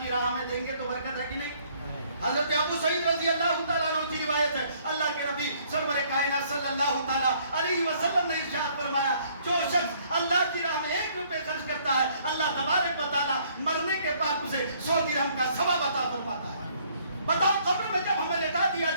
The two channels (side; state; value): both; inverted; correlation -0.63